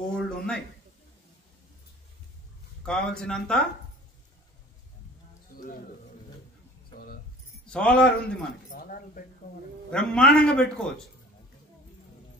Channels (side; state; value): both; normal; correlation 0.46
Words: ఉన్నాయి, కావలసినంత సోలార్ ఉంది, మనకి బ్రహ్మాండంగా పెట్టుకోవచ్చు.